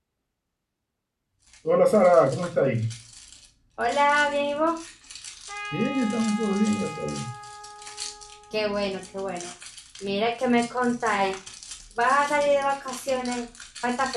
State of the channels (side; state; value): both; identical; correlation 1.00